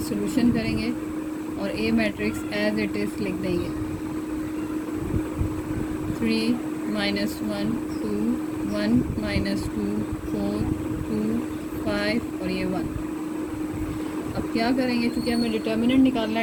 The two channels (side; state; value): both; identical; correlation 1.00